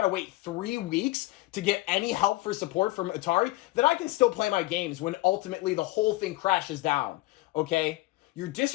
to wait 3 weeks to get any help for support from Atari, that I can still play my games when ultimately the whole thing crashes down, okay? You're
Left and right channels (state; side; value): quieter; right; 19.7 dB